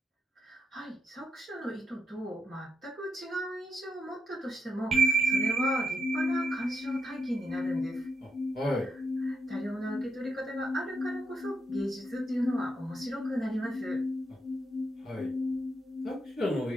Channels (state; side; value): normal; both; correlation 0.82